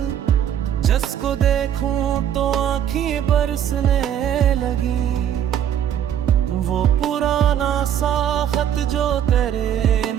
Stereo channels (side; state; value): left; quieter; 9.8 dB